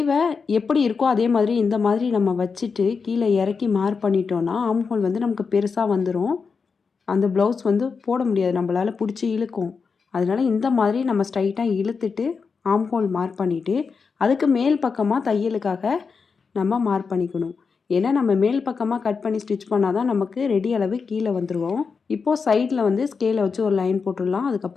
எப்படி இருக்கோ அதே மாதிரி இந்த மாதிரி நம்ம வச்சுட்டு கீழே இறக்கி மார்க் பண்ணிட்டோன்னா ஆம்ஹோல் வந்து நமக்கு பெருசாக வந்துடும். அந்த ப்ளவுஸ் வந்து போட முடியாது, நம்மளால் பிடிச்சி இழுக்கும். அதனால் இந்த மாதிரி நம்ம ஸ்ட்ரைட்டாக இழுத்துட்டு ஆம்ஹோல் மார்க் பண்ணிவிட்டு அதுக்கு மேல் பக்கமாக தையலுக்காக நம்ம மார்க் பண்ணிக்கணும். ஏன்னா நம்ம மேல் பக்கமாக கட் பண்ணி ஸ்டிச் பண்ணால் தான் நமக்கு ரெடி அளவு கீழே வந்துடுவோம். இப்போது சைடில் வந்து ஸ்கேலை வச்சு ஒரு லைன் போட்டுடலாம்.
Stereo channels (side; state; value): right; quieter; 5.2 dB